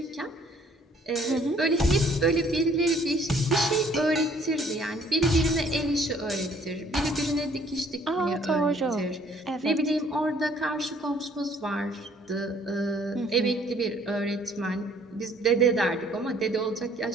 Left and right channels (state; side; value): normal; both; correlation 0.60